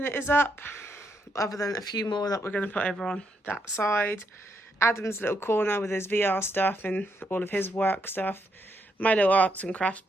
is up, other than a few more that we're going to put over on that side. Adam's little corner with his VR stuff and all of his work stuff. My little arts and crafts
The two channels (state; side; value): normal; both; correlation 0.77